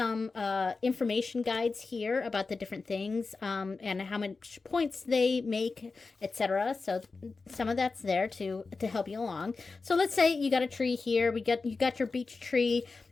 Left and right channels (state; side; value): quieter; right; 4.1 dB